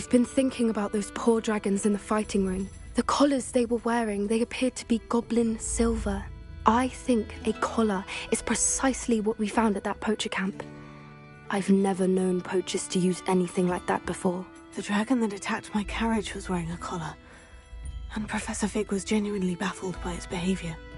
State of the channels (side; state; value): both; identical; correlation 1.00